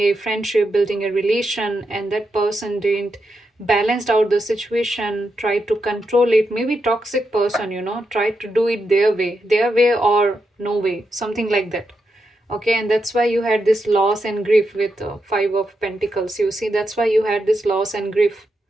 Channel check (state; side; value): normal; both; correlation 0.85